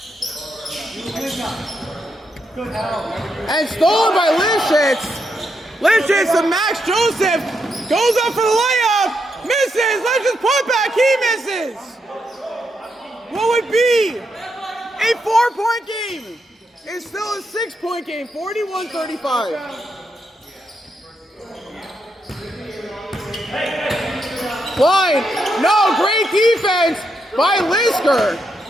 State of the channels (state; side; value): normal; both; correlation 0.81